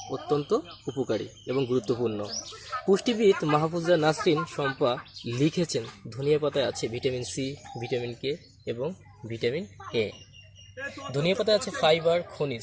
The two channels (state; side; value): identical; both; correlation 1.00